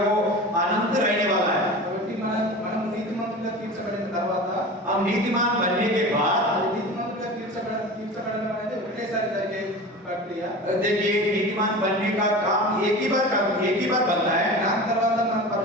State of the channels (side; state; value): both; normal; correlation 0.33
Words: वो अनंत रहने वाला है। కాబట్టి మనం నీతిమంతులుగా తీర్చబడిన తర్వాత हम नीतिमान बनने के बाद అది నీతిమంతులుగా తీర్చబడడం అనేది ఒకేసారి జరిగే ప్రక్రియ. देखिए, नीतिमान बनने का काम एक ही बार बनता है, దాని తర్వాత మనం